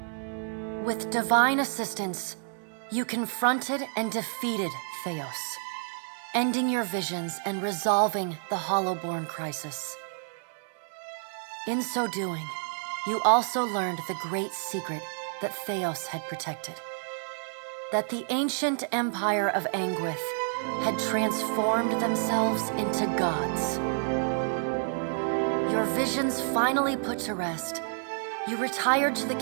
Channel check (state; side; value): silent; left; 58 dB below the other